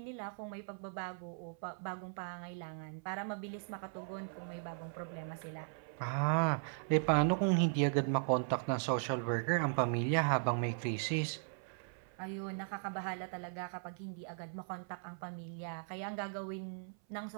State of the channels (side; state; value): left; silent; 52 dB below the other